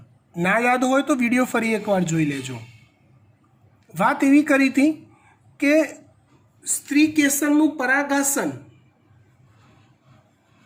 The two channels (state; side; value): identical; both; correlation 1.00